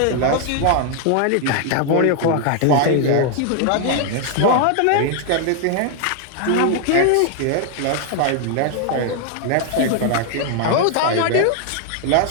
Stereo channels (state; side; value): different; both; correlation 0.00